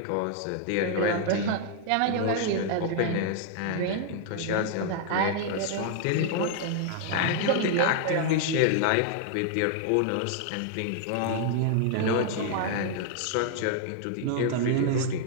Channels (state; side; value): different; both; correlation 0.00